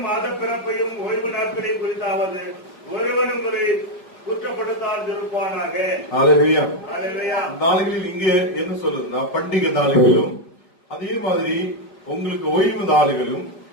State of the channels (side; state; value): right; late; 5.1 ms